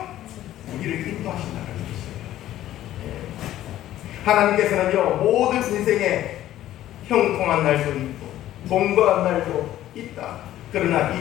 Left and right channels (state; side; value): quieter; right; 13.3 dB